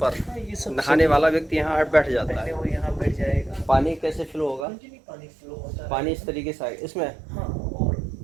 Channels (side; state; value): left; drops out; at 4.7 s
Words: पर नहाने वाला व्यक्ति यहाँ बैठ जाता है, वो यहाँ बैठ जाएगा। पानी कैसे फ्लो होगा? पानी फ्लो होता है, पानी इस तरीके से आएगा इसमें। हाँ, और